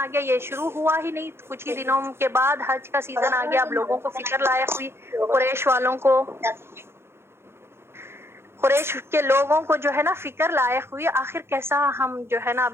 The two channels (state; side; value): late; left; 0.12 ms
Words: گیا، یہ شروع ہوا ہی نہیں، کچھ ہی دنوں کے بعد حج کا سیزن آ گیا. اب لوگوں کو فکر لائق ہوئی، قریش والوں کو، قریش کے لوگوں کو جو ہے نا فکر لائق ہوئی، آخر کیسا ہم جو ہے نا